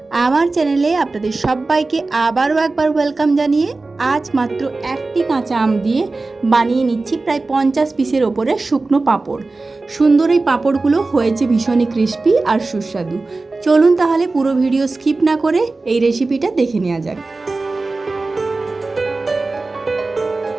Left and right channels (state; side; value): quieter; left; 3.5 dB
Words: আমার চ্যানেলে আপনাদের সবাইকে আবারও একবার ওয়েলকাম জানিয়ে আজ মাত্র একটি কাঁচা আম দিয়ে বানিয়ে নিচ্ছি প্রায় 50 পিসের ওপরে শুকনো পাঁপড়। সুন্দর এই পাঁপড়গুলো হয়েছে ভীষণই ক্রিস্পি আর সুস্বাদু। চলুন তাহলে পুরো ভিডিও স্কিপ না করে এই রেসিপিটা দেখে নেওয়া যাক।